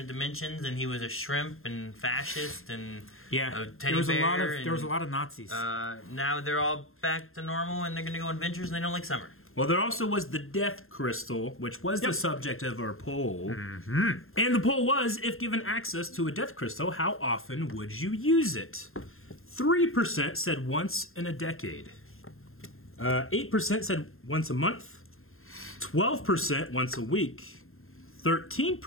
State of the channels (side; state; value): right; late; 0.61 ms